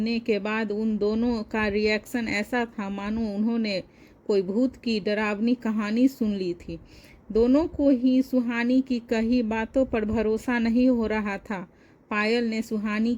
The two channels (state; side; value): identical; both; correlation 1.00